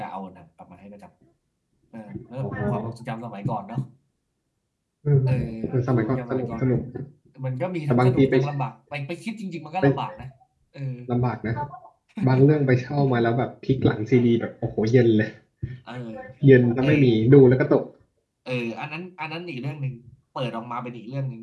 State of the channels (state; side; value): identical; both; correlation 1.00